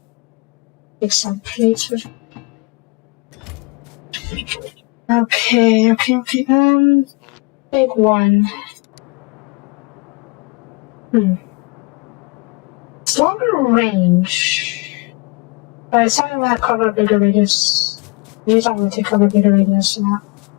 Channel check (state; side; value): quieter; right; 28.7 dB